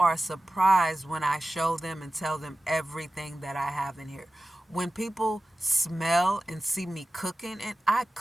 surprised when I show them and tell them everything that I have in here. When people smell and see me cooking, and I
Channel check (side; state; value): both; normal; correlation 0.94